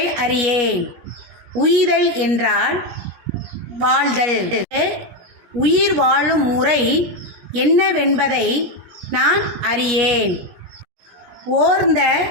அறியேன். உய்தல் என்றால் வாழ்தல். உயிர் வாழும் முறை என்னவென்பதை நான் அறியேன். ஓர்ந்த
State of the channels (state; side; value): late; left; 17 ms